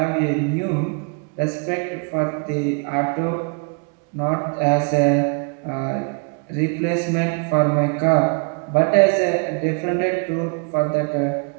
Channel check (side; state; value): left; quieter; 34.4 dB